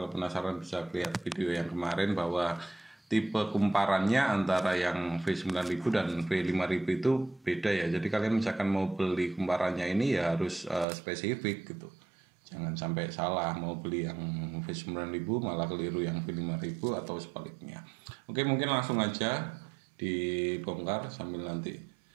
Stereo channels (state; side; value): drops out; left; at 10.9 s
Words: penasaran bisa lihat video yang kemarin bahwa tipe kumparannya antara yang V9000 dan V5000 itu beda ya. Jadi kalian misalkan mau beli kumparannya ini ya harus spesifik gitu. Jangan sampai salah mau beli yang V9000 malah keliru yang V5000 atau sebaliknya. Oke, mungkin langsung aja dibongkar sambil nanti